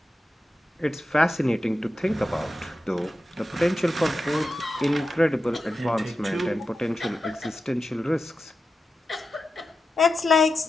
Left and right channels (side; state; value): both; normal; correlation 0.91